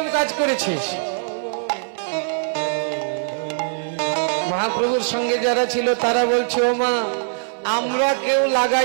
কাজ করেছিস? মহাপ্রভুর সঙ্গে যারা ছিল তারা বলছে ও মা আমরা কেউ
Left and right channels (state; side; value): silent; left; 60 dB below the other